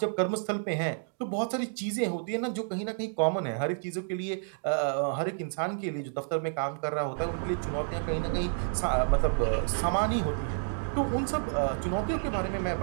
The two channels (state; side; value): silent; left; digital silence